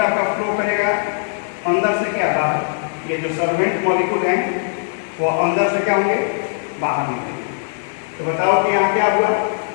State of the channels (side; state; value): right; silent; digital silence